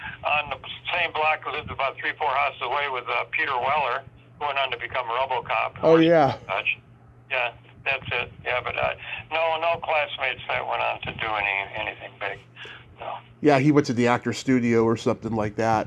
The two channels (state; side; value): identical; both; correlation 1.00